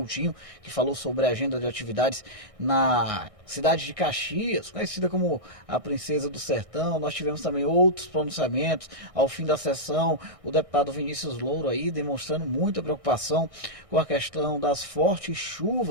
que falou sobre a agenda de atividades na cidade de Caxias, conhecida como a Princesa do Sertão. Nós tivemos também outros pronunciamentos ao fim da sessão. O deputado Vinícius Louro aí demonstrando muita preocupação com a questão das fortes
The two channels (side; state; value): left; late; 1.6 ms